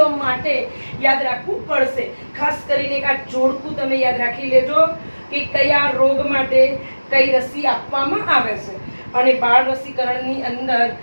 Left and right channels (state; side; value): inverted; both; correlation -1.00